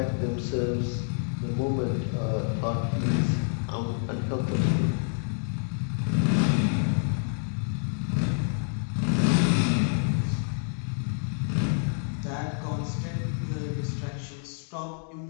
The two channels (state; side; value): silent; right; 59 dB below the other